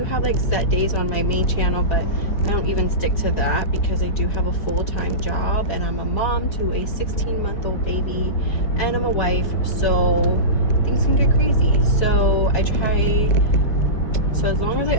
have like set days on my main channel, but I don't even stick to that because I do have a full-time job, and I'm a mom to a 16-month-old baby, and I'm a wife, so things can get crazy. So I try. So as long as I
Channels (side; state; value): right; late; 4.7 ms